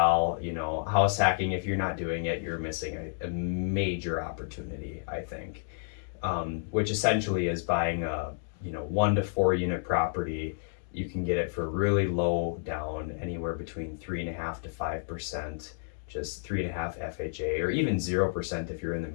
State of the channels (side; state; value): right; silent; digital silence